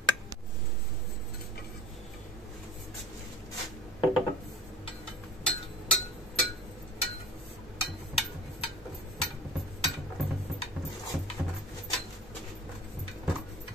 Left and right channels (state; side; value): normal; both; correlation 0.42